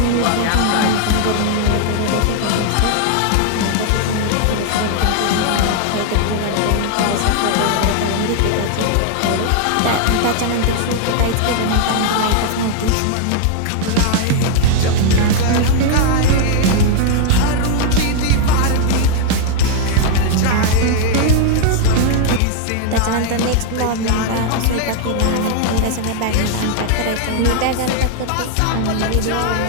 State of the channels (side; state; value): both; different; correlation 0.00